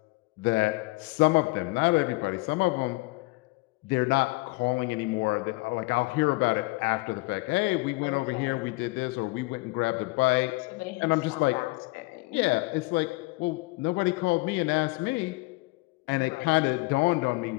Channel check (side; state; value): right; quieter; 24.3 dB